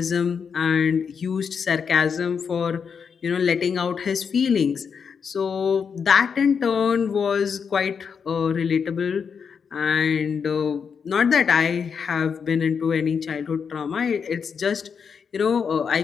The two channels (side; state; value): right; quieter; 6.4 dB